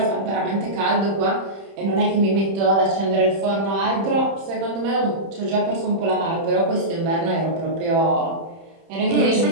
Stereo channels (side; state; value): left; late; 31 ms